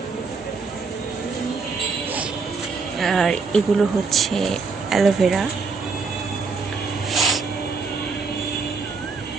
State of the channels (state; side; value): quieter; left; 4.7 dB